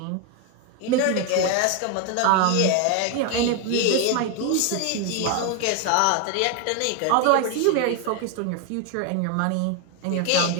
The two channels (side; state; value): both; different; correlation 0.01